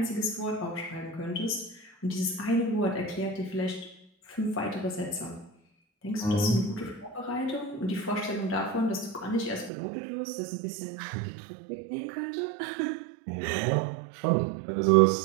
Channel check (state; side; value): drops out; left; at 9.7 s